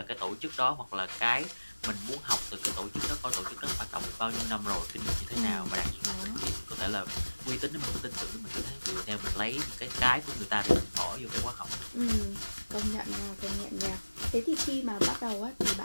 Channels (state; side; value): inverted; both; correlation -1.00